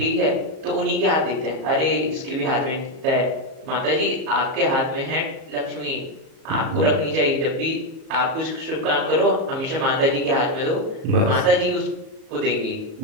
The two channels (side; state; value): left; late; 37 ms